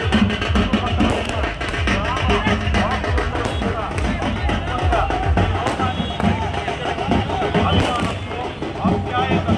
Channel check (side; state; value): both; identical; correlation 1.00